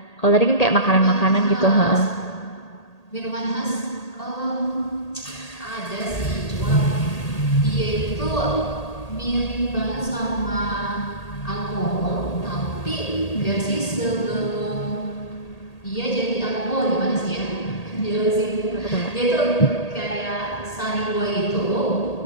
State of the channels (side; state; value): right; late; 1.8 ms